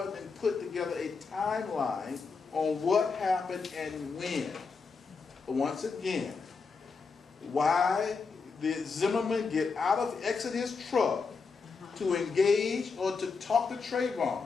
and put together a timeline on what happened and when. But once again, why did Zimmerman exit his truck to engage or to talk to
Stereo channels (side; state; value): right; quieter; 4.8 dB